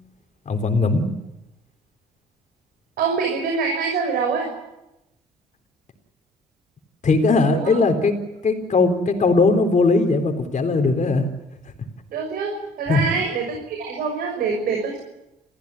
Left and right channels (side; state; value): both; normal; correlation 0.51